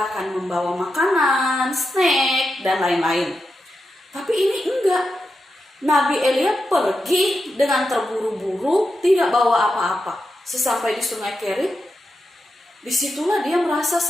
akan membawa makanan, snack, dan lain-lain. Tapi ini enggak. Nabi Elia pergi dengan terburu-buru, tidak bawa apa-apa. Sesampai di sungai Kerit, disitulah dia merasa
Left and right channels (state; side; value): normal; both; correlation 0.88